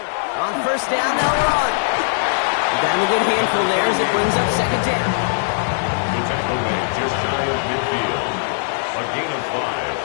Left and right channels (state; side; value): silent; right; digital silence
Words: On first down, they'll run. Down a good handful there as it brings up second down. The tackle made just shy of midfield. A gain of